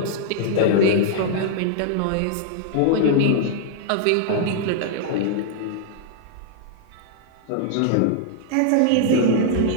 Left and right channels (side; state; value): both; different; correlation -0.01